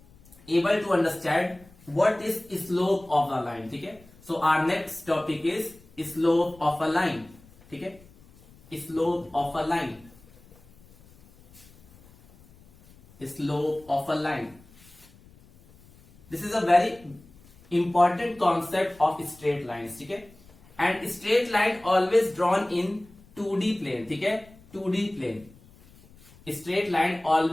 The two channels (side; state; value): left; noise; rumble, 26 dB below the sound